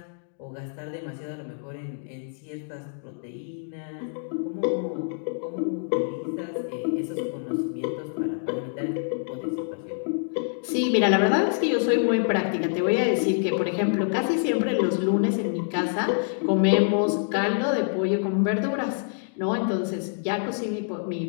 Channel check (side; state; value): right; silent; digital silence